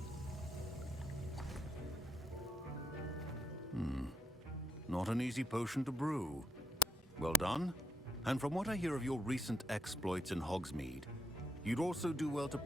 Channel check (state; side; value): normal; both; correlation 0.76